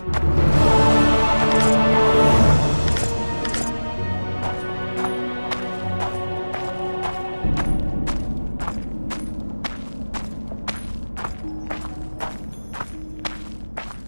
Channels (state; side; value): inverted; both; correlation -1.00